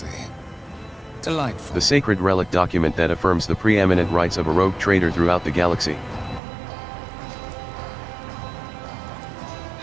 Delightful. The sacred relic document that affirms the preeminent rights of a rogue trader throughout the galaxy.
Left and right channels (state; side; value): drops out; left; at 6.4 s